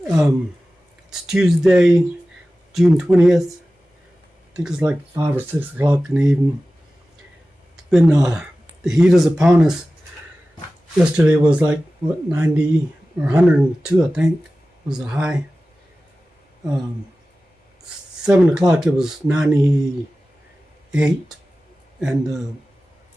Tuesday, June 20th. I think it's like 5 or 6 o'clock in the evening. It's been, the heat is upon us. Yesterday was like, 90 or 102, I think, was the high. 7 o'clock it was 98, and the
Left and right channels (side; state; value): both; normal; correlation 0.95